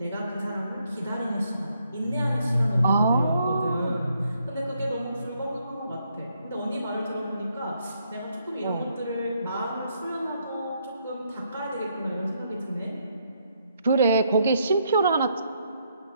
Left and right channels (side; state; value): both; inverted; correlation -0.74